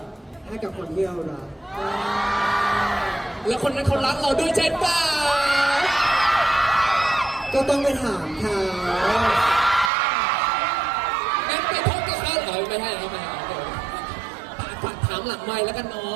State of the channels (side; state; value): left; drops out; at 9.9 s